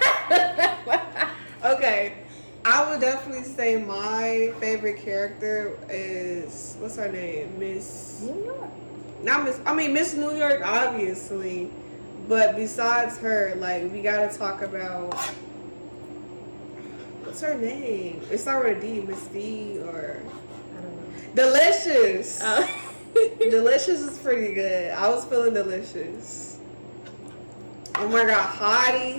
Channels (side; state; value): both; inverted; correlation -1.00